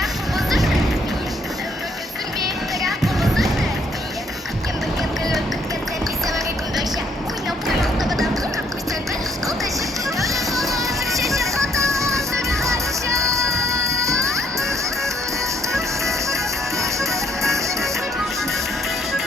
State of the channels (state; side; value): normal; both; correlation 0.69